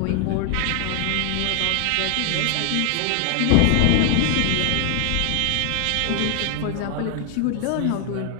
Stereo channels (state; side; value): different; both; correlation 0.00